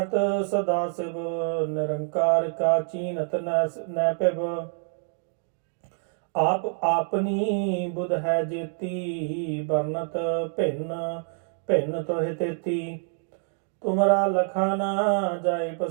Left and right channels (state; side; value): silent; left; 60 dB below the other